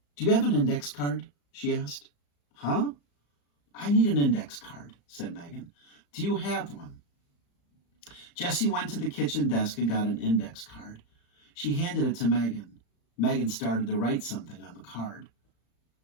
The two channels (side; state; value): right; late; 35 ms